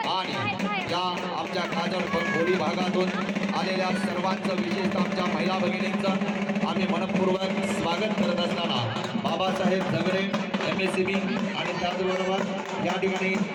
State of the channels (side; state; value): both; identical; correlation 1.00